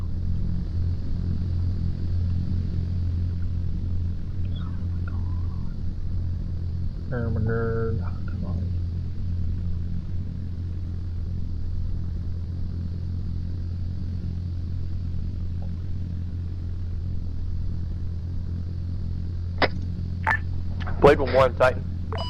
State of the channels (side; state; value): both; identical; correlation 1.00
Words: McGurk. Come on. Blade 1-1, Titan.